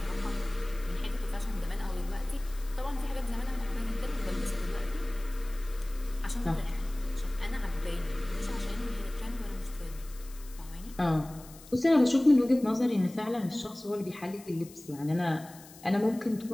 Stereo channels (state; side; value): noise; left; hiss, 20 dB below the sound